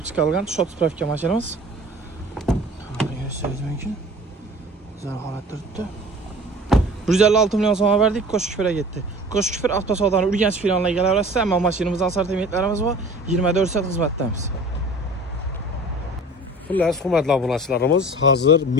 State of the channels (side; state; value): both; normal; correlation 0.43